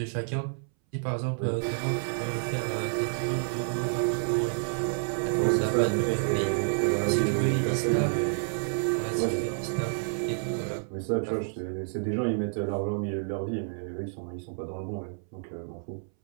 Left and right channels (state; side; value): silent; left; 58 dB below the other